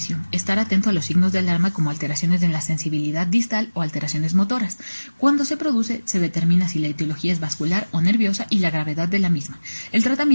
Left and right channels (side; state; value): both; inverted; correlation -1.00